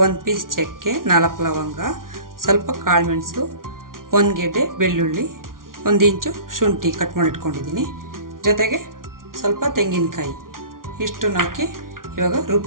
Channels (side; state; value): left; late; 0.91 ms